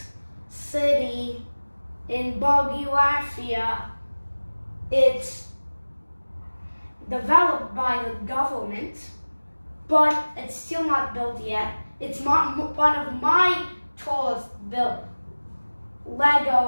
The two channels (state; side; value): inverted; both; correlation -1.00